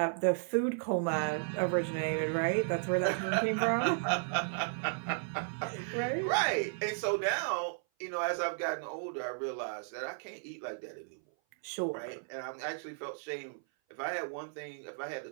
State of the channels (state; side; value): silent; left; 55 dB below the other